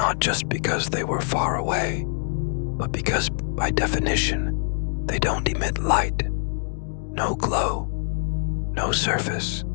just because they were far away, but because, by definition, they don't emit light. No glow, no surface,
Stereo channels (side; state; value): right; silent; 62 dB below the other